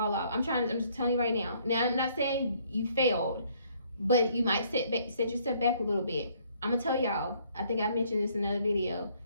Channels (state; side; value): inverted; both; correlation -0.64